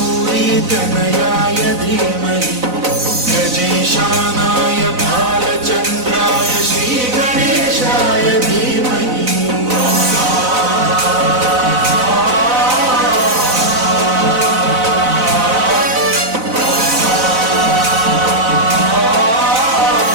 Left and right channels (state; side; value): late; left; 4.0 ms